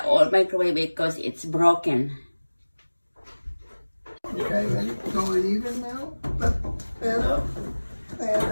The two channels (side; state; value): both; inverted; correlation -1.00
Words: old microwave because it's broken. Okay, and it's going even now. And